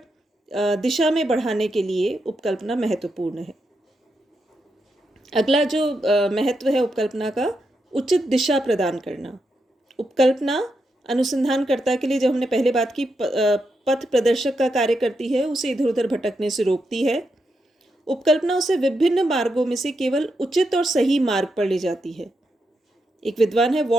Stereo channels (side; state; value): both; normal; correlation 0.84